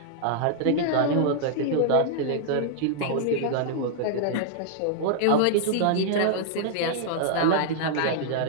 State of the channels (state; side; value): different; both; correlation -0.01